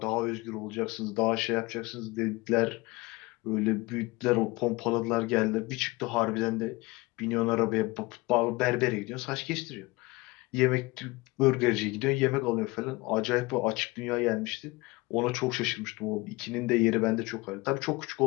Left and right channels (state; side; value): quieter; right; 23.0 dB